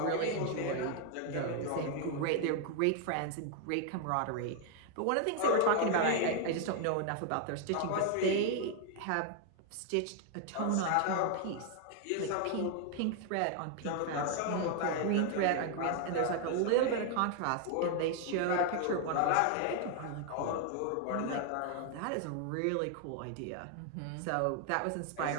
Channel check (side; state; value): both; different; correlation 0.00